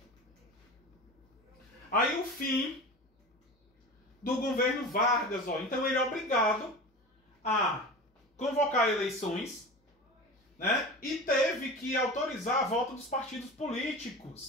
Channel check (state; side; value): normal; both; correlation 0.32